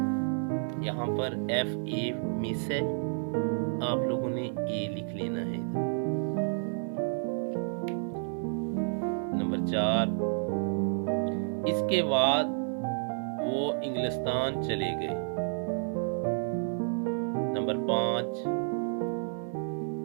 यहाँ पर FA मिस है, आप लोगों ने A लिख लेना है। नंबर 4, इसके बाद वो इंग्लिस्तान चले गए। नंबर 5,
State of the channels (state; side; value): silent; left; 57 dB below the other